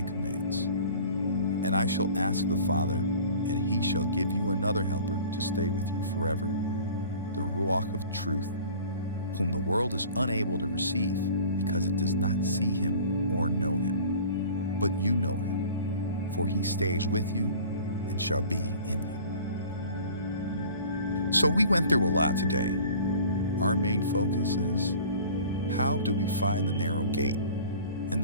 commands. And I shall ask the Father, and he shall give you another helper to stay with you forever, the Ruach of truth, whom the world is unable to receive because it does not see him or know him. But you know him, for he stays with you and shall be in you." So we went through a lot today. Our main focus is, how do we find the narrow gate? And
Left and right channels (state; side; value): inverted; both; correlation -0.45